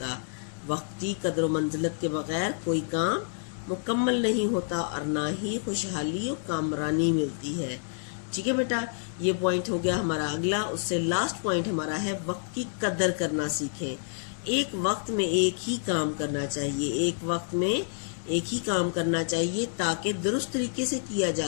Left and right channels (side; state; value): right; silent; 59 dB below the other